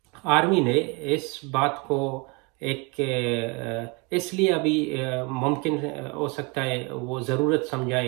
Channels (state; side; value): quieter; left; 29.6 dB